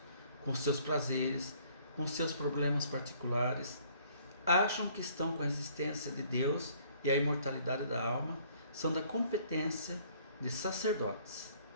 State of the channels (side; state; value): both; inverted; correlation -0.60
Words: com seus prazeres, com seus problemas particulares. Acham que estão com a existência de Deus e a imortalidade da alma são da competência de sacerdotes,